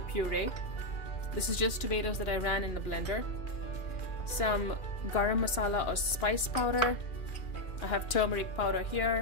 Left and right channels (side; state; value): right; late; 2.9 ms